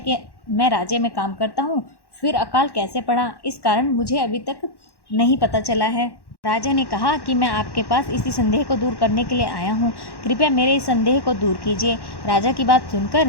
मैं राज्य में काम करता हूँ, फिर अकाल कैसे पड़ा, इस कारण मुझे अभी तक नहीं पता चला है। राजा ने कहा कि मैं आपके पास इसी संदेह को दूर करने के लिए आया हूँ, कृपया मेरे इस संदेह को दूर कीजिए। राजा की बात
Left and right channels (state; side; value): late; right; 1.1 ms